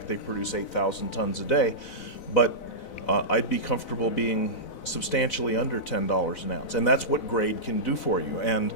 they produce 8,000 tons a day, but I'd be comfortable being substantially under $10 an ounce, and that's what grade can do for you. And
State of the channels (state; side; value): late; right; 4.0 ms